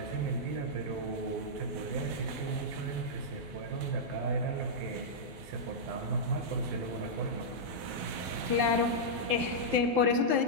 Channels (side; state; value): left; late; 12 ms